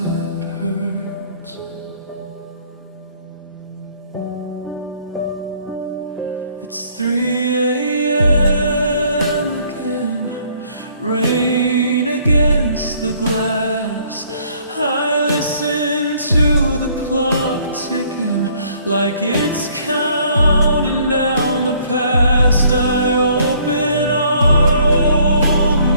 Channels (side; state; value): both; inverted; correlation -0.61